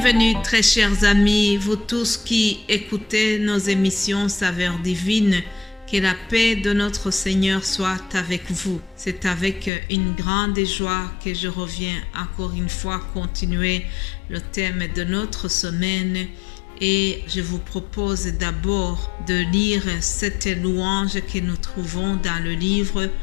très chers amis, vous tous qui écoutez nos émissions Saveurs divines. Que la paix de notre Seigneur soit avec vous. C'est avec une grande joie que je reviens encore une fois continuer le thème de notre semaine. Et je vous propose d'abord de lire cette louange que nous trouvons dans le livre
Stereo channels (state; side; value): drops out; right; at 9.7 s